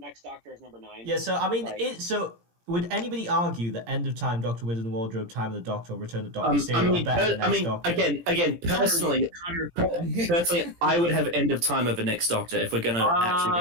Doctor as number 9. Yeah, so I mean, Right. so would anybody argue that End of Time, Doctor Wizard and the Wardrobe, Time of the Doctor, or Return of Doctor Mysterio are better than Next Doctor? again, personally, I would have End of Time over Next Doctor if we're going to actually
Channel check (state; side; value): late; left; 17 ms